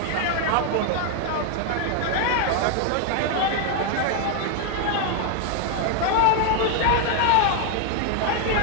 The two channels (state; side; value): different; both; correlation 0.01